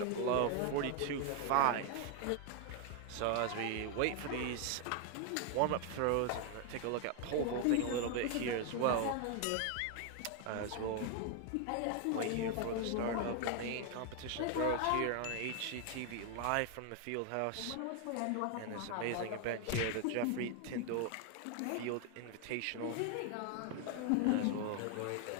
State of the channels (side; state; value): both; different; correlation 0.01